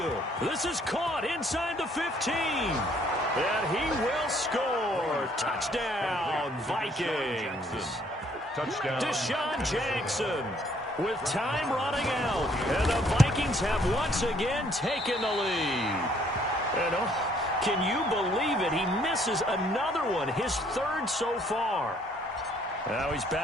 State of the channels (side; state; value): both; normal; correlation 0.64